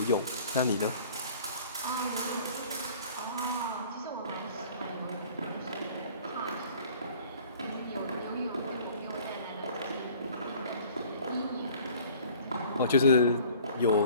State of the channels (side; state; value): both; inverted; correlation -0.50